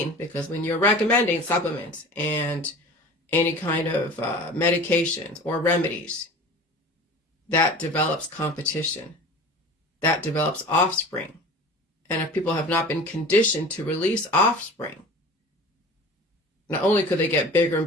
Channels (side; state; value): both; normal; correlation 0.39